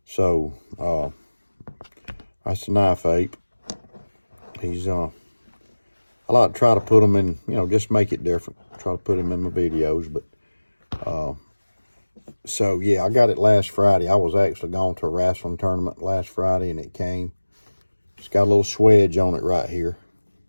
That's the knife ape. He's I like to try to put them in, just make it different. Try to put them in my videos, but so yeah, I got it last Friday. I was actually going to a wrestling tournament last Friday, and it came. It's got a little swedge on it right here,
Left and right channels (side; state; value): both; inverted; correlation -1.00